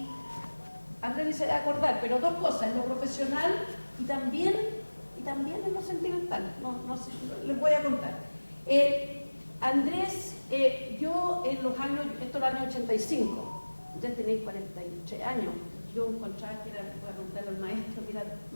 Andrea ni se va a acordar, pero 2 cosas, en lo profesional y también en lo sentimental. No sé, les voy a contar. Andrés, yo en los años, esto era el año 85, ya tenéis 48 años, yo encontraba que era, voy a contar al maestro, que era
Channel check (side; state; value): both; inverted; correlation -1.00